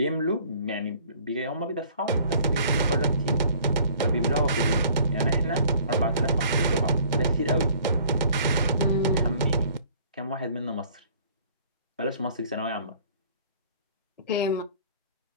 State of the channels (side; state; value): both; inverted; correlation -0.53